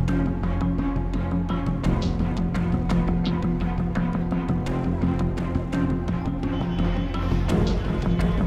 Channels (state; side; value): identical; both; correlation 1.00